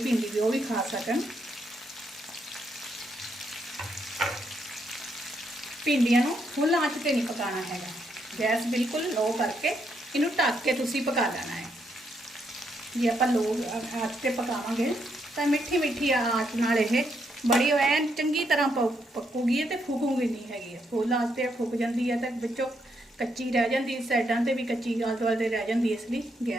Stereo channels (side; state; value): both; normal; correlation 0.77